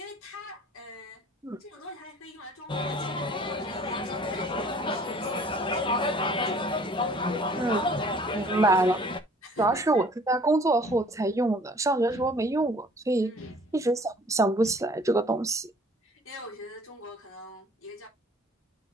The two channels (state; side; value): normal; both; correlation 0.53